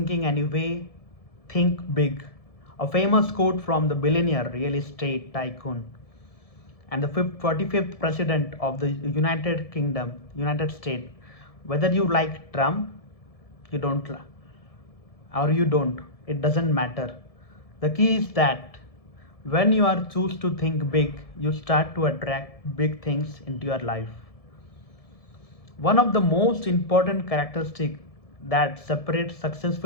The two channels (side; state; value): right; late; 1.7 ms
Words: anyway, think big. A famous quote from the billionaire real estate tycoon and the 45th president of the United Kingdom, United States. Whether you like Trump, you don't or you don't, it doesn't matter. The key is that when you are choose to think big, you start to attract big things into your life. One of the most important characteristics that separates